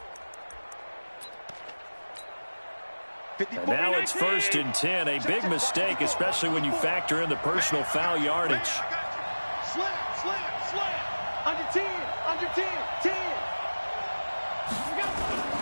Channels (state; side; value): inverted; both; correlation -1.00